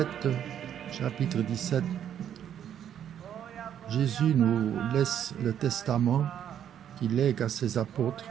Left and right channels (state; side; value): quieter; left; 9.7 dB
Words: chapitre 17, Jésus nous laisse le testament qu'il lègue à ses apôtres.